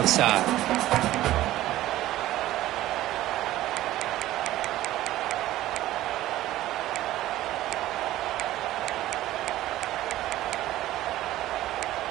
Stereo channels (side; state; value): left; quieter; 15.0 dB